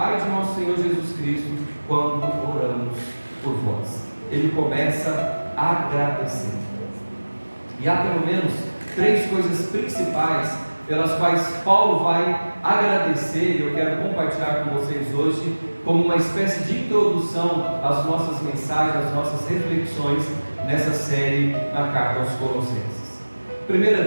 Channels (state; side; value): inverted; both; correlation -1.00